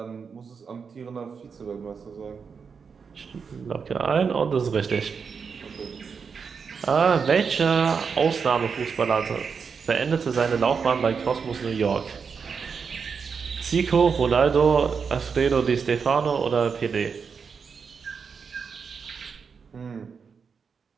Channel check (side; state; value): left; quieter; 5.9 dB